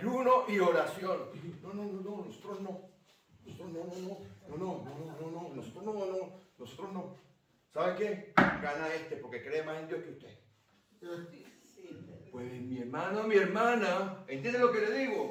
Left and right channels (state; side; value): identical; both; correlation 1.00